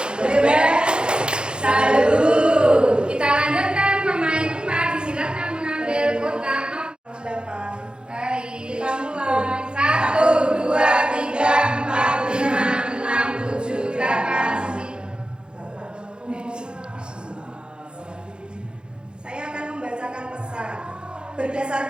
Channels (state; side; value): late; left; 0.050 ms